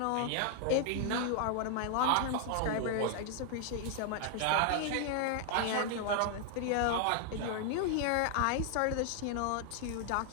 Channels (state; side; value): different; both; correlation 0.00